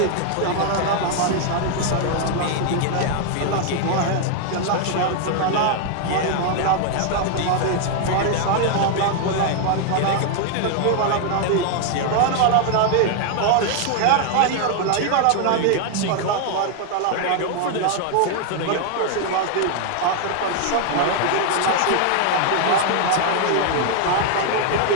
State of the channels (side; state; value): both; different; correlation 0.00